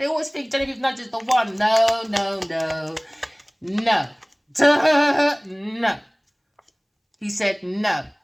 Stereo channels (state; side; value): identical; both; correlation 1.00